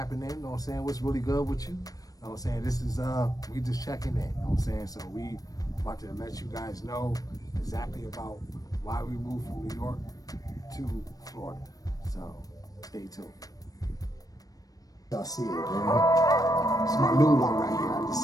in. You know what I'm saying? What's really good with you? You know what I'm saying? This is we just checking in. You know what I'm saying? So we about to let you guys know exactly about why we moved from New York to Florida. So stay tuned. Y'all see it, man. It's my new one right here. I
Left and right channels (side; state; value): right; late; 0.18 ms